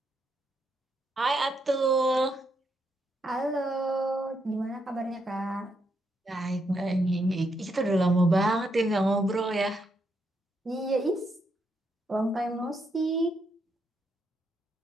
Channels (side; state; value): both; normal; correlation 0.79